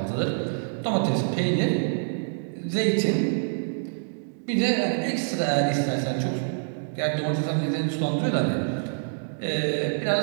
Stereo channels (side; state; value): left; silent; digital silence